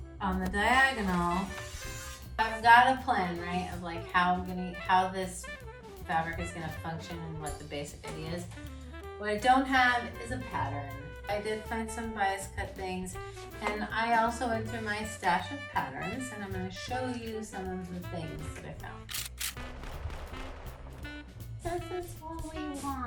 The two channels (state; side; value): identical; both; correlation 1.00